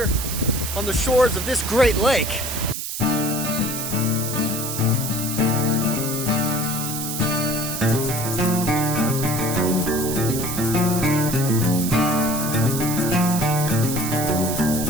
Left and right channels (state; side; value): noise; right; hiss, 5 dB below the sound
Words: on the shores of this great lake.